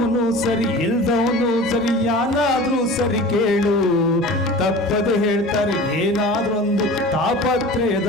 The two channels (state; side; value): normal; both; correlation 0.38